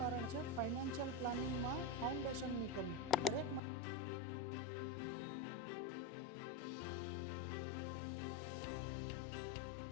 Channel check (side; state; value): right; drops out; at 3.6 s